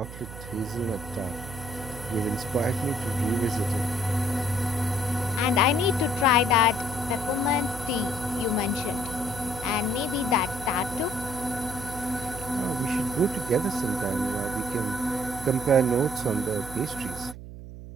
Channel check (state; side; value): noise; right; hum, 12 dB below the sound